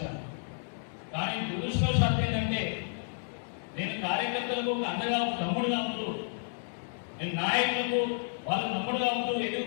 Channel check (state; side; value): silent; right; digital silence